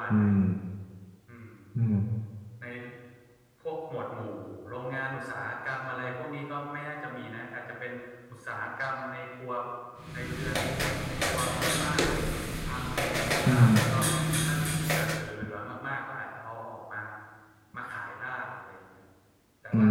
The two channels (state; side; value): identical; both; correlation 1.00